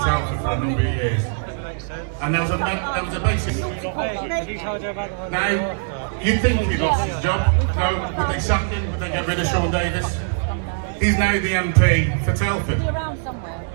for a number of years, and there was a basic. Now, you think he lost his job? No, would they sack him? Would they get rid of Sean Davis? He's now the MP for Telford.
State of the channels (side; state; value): left; silent; 64 dB below the other